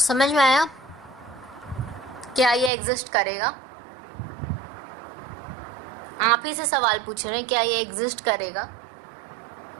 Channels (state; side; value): drops out; left; at 2.7 s